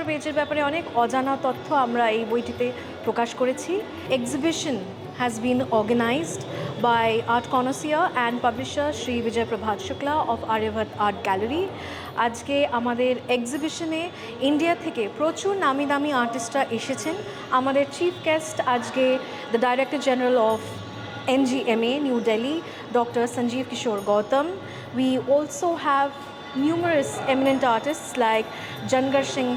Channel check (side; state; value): both; identical; correlation 1.00